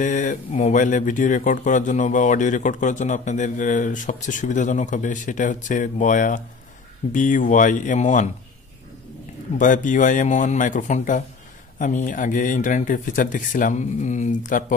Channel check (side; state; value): right; quieter; 4.6 dB